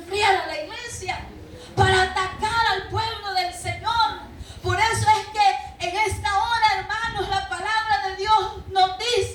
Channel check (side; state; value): both; identical; correlation 1.00